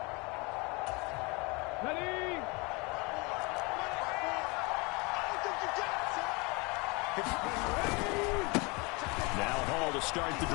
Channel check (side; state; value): right; quieter; 27.9 dB